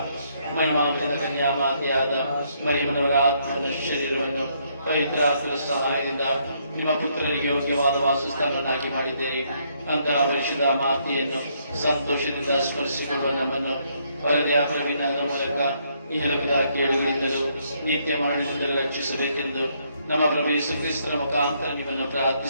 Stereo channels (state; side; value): inverted; both; correlation -0.71